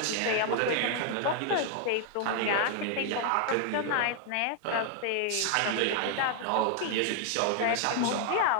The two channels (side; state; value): both; different; correlation 0.00